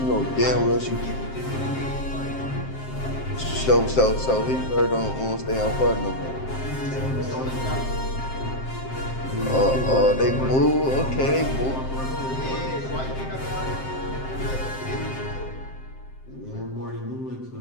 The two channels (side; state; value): right; late; 7.6 ms